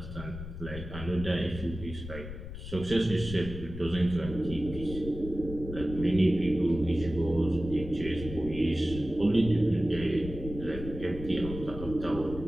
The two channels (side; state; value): left; noise; rumble, 10 dB below the sound